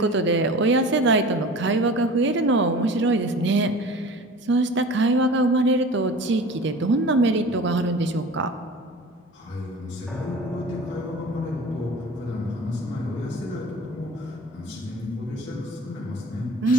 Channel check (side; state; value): both; normal; correlation 0.39